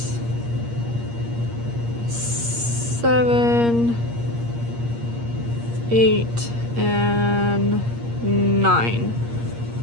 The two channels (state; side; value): late; left; 8.5 ms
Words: 7, 8, and 9.